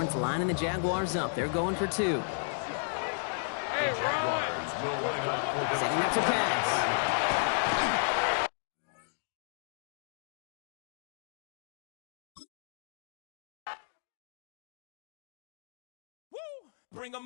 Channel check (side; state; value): right; silent; digital silence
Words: Horns lining the Jaguars up. They're going for 2. Hey, Ron! Jaguars will line up for the Setting up to pass. Bring